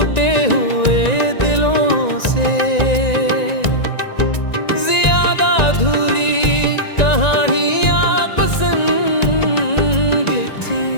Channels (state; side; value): late; right; 1.9 ms